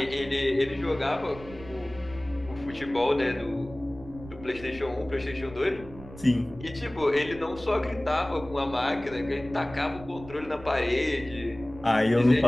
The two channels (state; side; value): noise; right; rumble, 17 dB below the sound